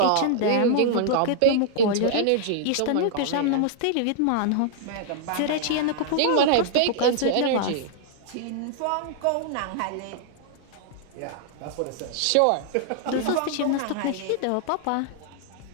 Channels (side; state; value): both; different; correlation -0.01